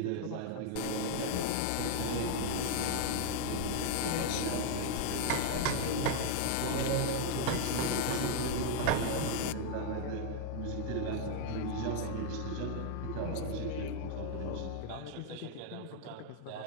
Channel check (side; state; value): both; different; correlation 0.00